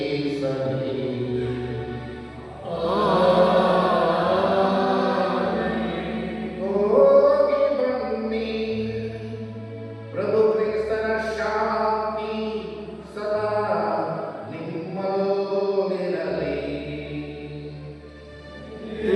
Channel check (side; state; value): both; identical; correlation 1.00